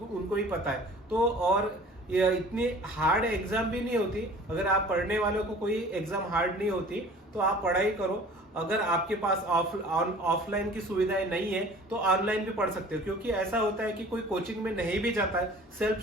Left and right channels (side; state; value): both; normal; correlation 0.46